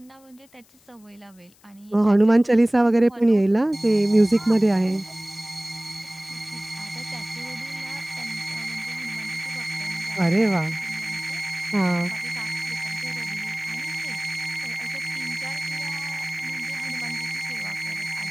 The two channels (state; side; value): noise; left; hiss, 29 dB below the sound